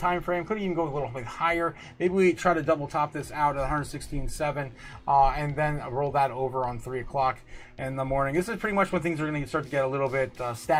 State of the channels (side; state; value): both; identical; correlation 1.00